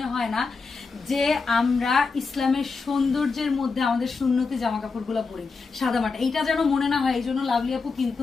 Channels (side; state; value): right; quieter; 4.5 dB